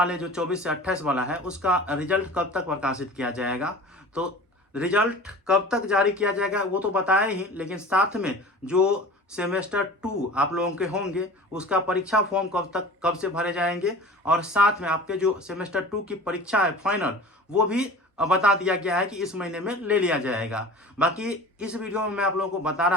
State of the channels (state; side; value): normal; both; correlation 0.39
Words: जो 24 से 28 वाला है उसका रिजल्ट कब तक प्रकाशित किया जाएगा। तो रिजल्ट कब तक जारी किया जाएगा वो तो बताया ही, लेकिन साथ में जो सेमेस्टर 2 आप लोगों के होंगे उसका परीक्षा फॉर्म कब से भरे जाएंगे और साथ में आपके जो सेमेस्टर 2 की परीक्षा है फाइनल, वो भी बता दिया गया है कि इस महीने में ले लिया जाएगा। बाकी इस वीडियो में मैं आप लोगों को बता